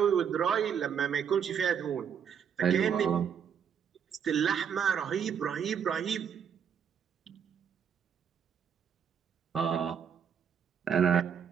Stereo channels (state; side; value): quieter; left; 7.7 dB